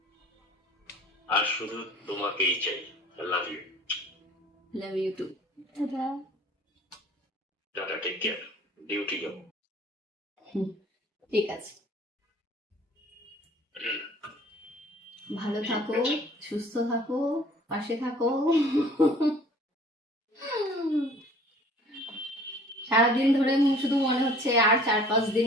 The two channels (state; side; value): normal; both; correlation 0.51